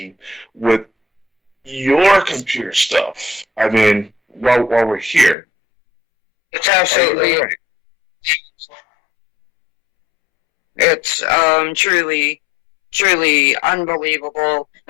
with your computer stuff. I mean, while we're here. It's absolutely, right? it's truly unbelievable.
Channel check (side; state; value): right; drops out; at 5.4 s